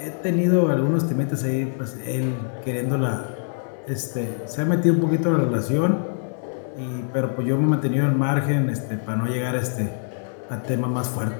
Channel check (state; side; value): silent; right; 59 dB below the other